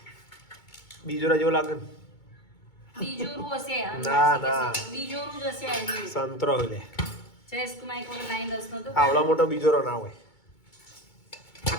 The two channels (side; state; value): right; late; 2.2 ms